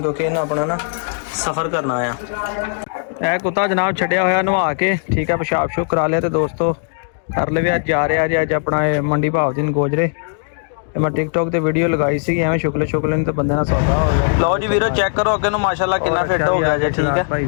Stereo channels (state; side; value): silent; right; digital silence